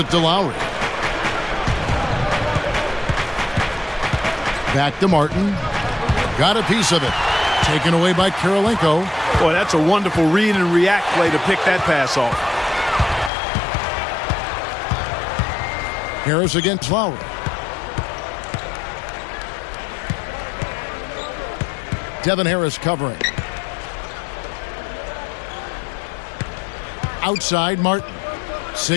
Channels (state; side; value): drops out; right; at 13.3 s